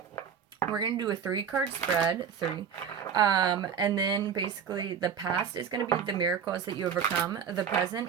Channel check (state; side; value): quieter; left; 7.4 dB